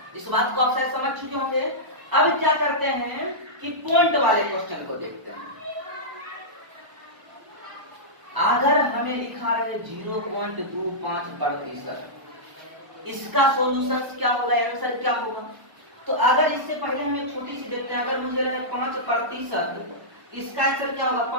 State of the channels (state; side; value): late; left; 1.0 ms